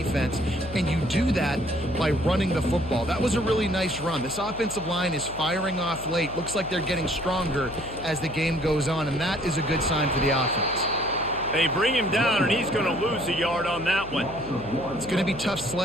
and you do that by running the football. That was a really nice run. This offensive line is firing off late. Looks like they're getting stronger as the game goes on, and that is a good sign for the offense. They bring him down, and he's going to lose a yard on that one. It's going to be tough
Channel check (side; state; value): left; noise; hum, 14 dB below the sound